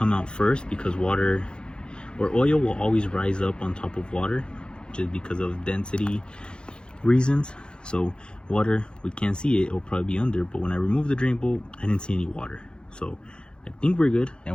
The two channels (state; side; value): late; right; 0.050 ms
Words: out first, because water or oil will always rise up on top of water just because of density reasons. So water, we can't see it, it'll probably be under, but when I removed the drain bolt, I didn't see any water. So I think we're good,